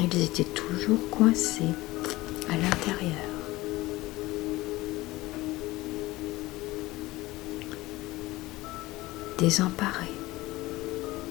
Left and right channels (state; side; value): quieter; right; 19.2 dB